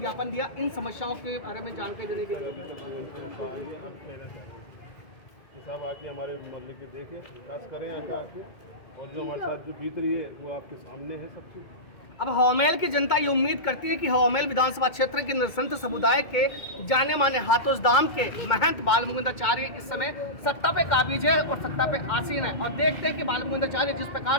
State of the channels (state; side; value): late; right; 2.2 ms